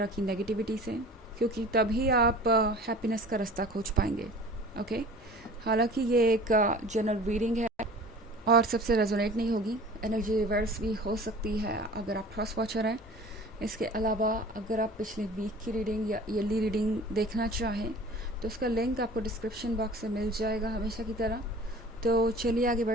की नेगेटिविटी से, क्योंकि तभी आप हैप्पीनेस का रास्ता खोज पाएंगे। ओके, हालांकि ये एक जनरल रीडिंग है और सबसे रेजोनेट नहीं होगी, एनर्जी रिवर्स भी हो सकती है अगर आप क्रॉस वॉचर हैं। इसके अलावा अगर आप पिछले वीक की रीडिंग या ईयरली रीडिंग देखना चाहें तो उसका लिंक आपको डिस्क्रिप्शन बॉक्स में मिल जाएगा हमेशा की तरह। तो चलिए आगे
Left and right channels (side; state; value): both; normal; correlation 0.44